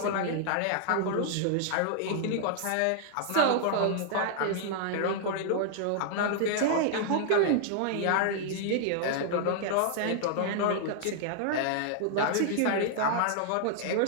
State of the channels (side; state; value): both; different; correlation -0.01